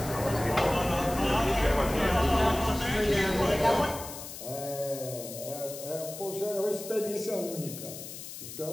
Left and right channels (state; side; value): noise; left; hiss, 11 dB below the sound